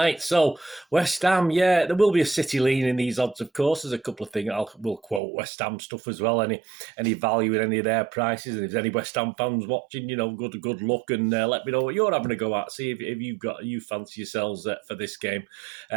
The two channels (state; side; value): drops out; left; at 5.2 s